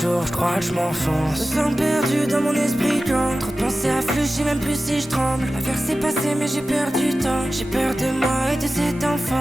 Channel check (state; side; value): normal; both; correlation 0.95